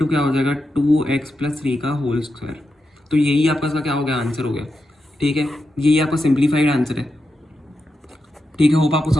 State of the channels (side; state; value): both; normal; correlation 0.87